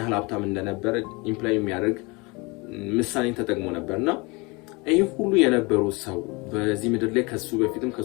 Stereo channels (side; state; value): right; quieter; 26.9 dB